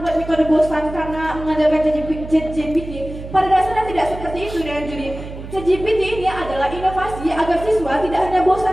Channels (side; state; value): right; noise; hum, 11 dB below the sound